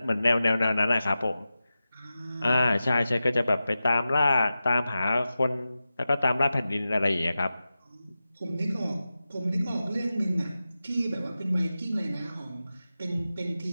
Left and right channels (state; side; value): inverted; both; correlation -0.93